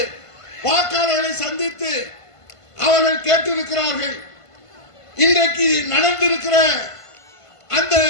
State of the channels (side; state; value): right; late; 1.5 ms